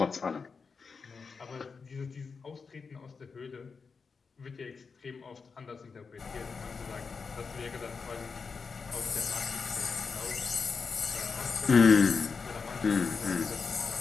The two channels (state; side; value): quieter; right; 5.1 dB